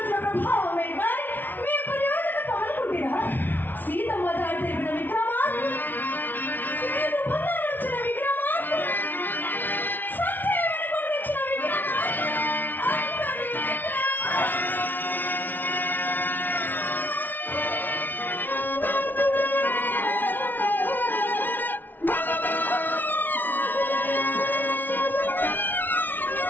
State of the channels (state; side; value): late; right; 0.089 ms